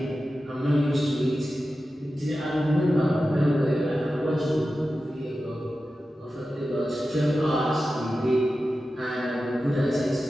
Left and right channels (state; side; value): normal; both; correlation 0.93